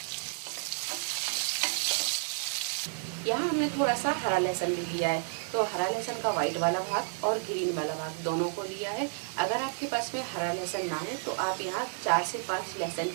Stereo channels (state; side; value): silent; left; digital silence